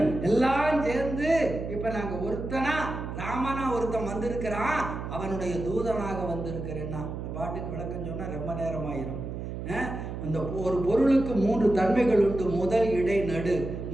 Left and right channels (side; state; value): right; noise; hum, 7 dB below the sound